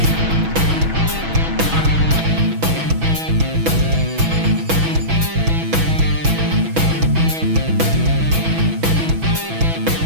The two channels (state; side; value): late; left; 6.1 ms